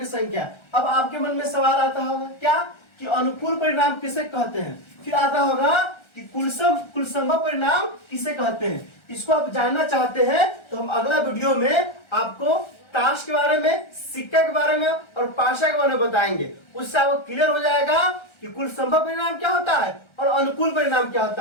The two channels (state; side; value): late; right; 1.3 ms